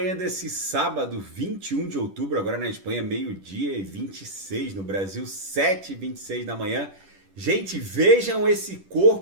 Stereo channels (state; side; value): late; left; 10 ms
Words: desse sábado, 21 de outubro. Agora na Espanha, meio-dia e 26. No Brasil, 7h26 da manhã. Gente, vejam esse